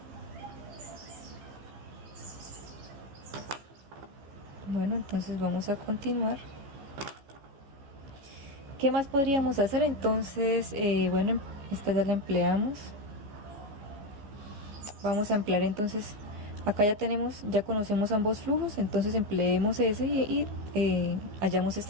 Bueno, entonces vamos a continuar. ¿Qué más podríamos hacer? Entonces, bueno, esta ya la empleamos. Vamos a emplear entonces, acá ya conocemos ambos flujos, entonces empleemos ese y hallamos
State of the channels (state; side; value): late; left; 15 ms